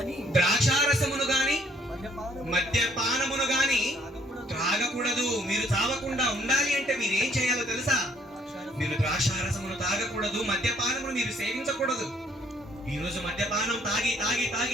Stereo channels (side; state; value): both; normal; correlation 0.64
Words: ద్రాక్షారసమును గాని మద్యపానమును గాని త్రాగకూడదు. మీరు చావకుండా ఉండాలి అంటే మీరు ఏం చేయాలో తెలుసా? మీరు ద్రాక్షారసమును తాగకూడదు, మద్యపానమును మీరు సేవించకూడదు. ఈ రోజు మద్యపానం తాగి తాగి